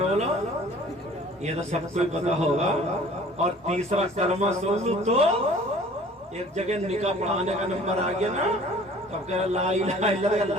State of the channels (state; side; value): normal; both; correlation 0.50